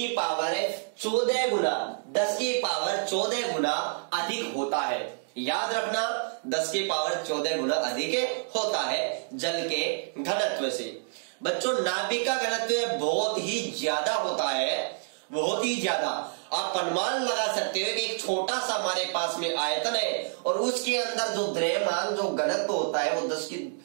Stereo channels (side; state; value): left; silent; digital silence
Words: पावर 14 गुना 10 की पावर 14 गुना अधिक होता है। याद रखना 10 की पावर 14 गुना अधिक होता है जल के घनत्व से। बच्चों नाभिक का घनत्व बहुत ही ज्यादा होता है, बहुत ही ज्यादा। आप अनुमान लगा सकते हो कि एक छोटा सा हमारे पास में आयतन है और उसके अंदर जो द्रव्यमान जो घनत्व होता है वो